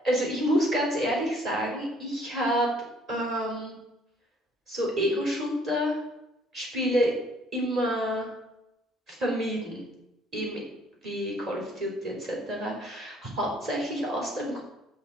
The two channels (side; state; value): both; normal; correlation 0.61